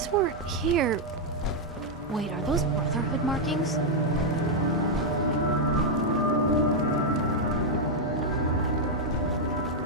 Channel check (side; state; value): both; normal; correlation -0.01